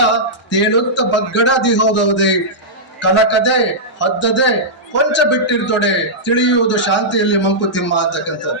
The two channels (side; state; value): both; normal; correlation -0.12